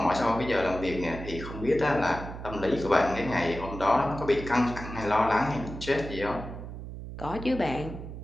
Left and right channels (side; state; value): right; noise; hum, 10 dB below the sound